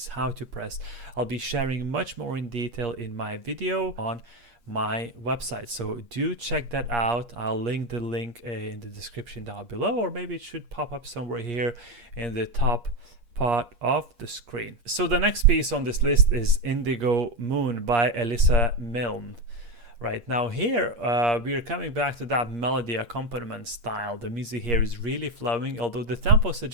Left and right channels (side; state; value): left; late; 8.5 ms